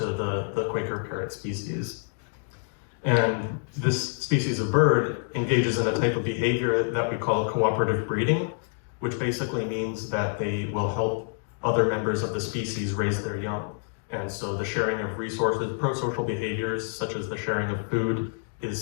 the Quaker parrot species. And this species of bird engages in a type of behavior that we call cooperative breeding, which basically means that they will help other members of the species raise their young. And so the sharing of resources, pro-social behaviors, such as the sharing of food, is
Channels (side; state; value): right; silent; digital silence